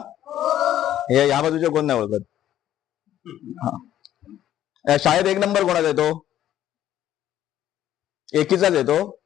हे या बाजूचे कोण नाही ओळखत? हा, शाळेत 1 नंबर कोणाचा येतो? एकीचाच येतो?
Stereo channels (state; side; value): quieter; right; 11.9 dB